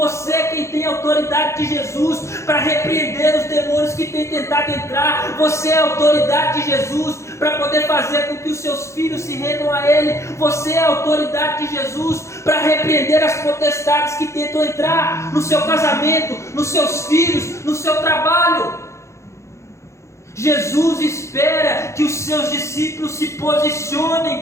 é quem tem a autoridade de Jesus para repreender os demônios que têm tentado entrar. Você é a autoridade de Jesus para poder fazer com que os seus filhos se rendam a Ele. Você é a autoridade de Jesus para repreender as potestades que tentam entrar no seu casamento, nos seus filhos, no seu trabalho. Jesus espera que os seus discípulos se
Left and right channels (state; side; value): late; right; 0.14 ms